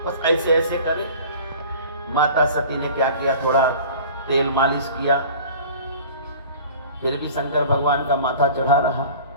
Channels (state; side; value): inverted; both; correlation -0.42